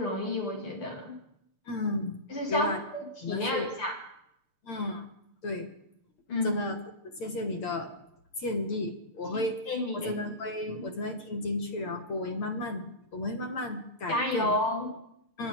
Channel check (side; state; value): right; late; 6.7 ms